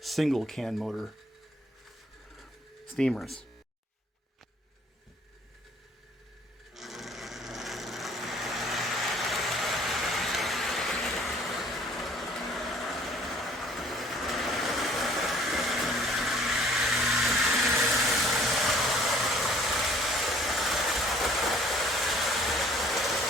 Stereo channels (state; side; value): normal; both; correlation 0.58